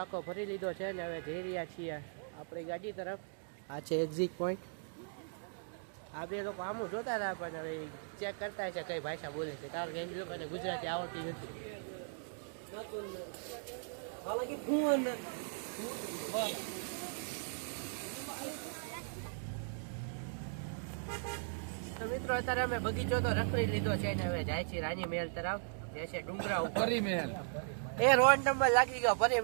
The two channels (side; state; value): left; silent; digital silence